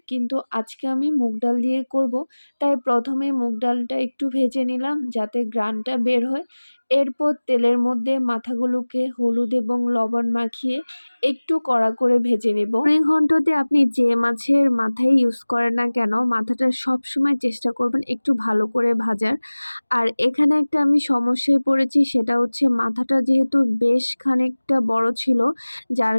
কিন্তু আজকে আমি মুগ ডাল দিয়ে করব। তাই প্রথমে মুগ ডালটা একটু ভেজে নিলাম যাতে ঘ্রাণটা বের হয়। এরপর তেলের মধ্যে মাথাগুলোকে হলুদ এবং লবণ মাখিয়ে একটু কড়া করে ভেজে নেব। মুড়িঘণ্টতে আপনি যে মাছের মাথাই ইউজ করেন না কেন, মাথাটা সবসময় চেষ্টা করবেন একটু ভালো করে ভাজার। আর এখানে একটা আমি সমস্যায় পড়েছি, সেটা হচ্ছে মাথাটা যেহেতু বেশ খানিকটা বড় ছিল, যার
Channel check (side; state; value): both; inverted; correlation -1.00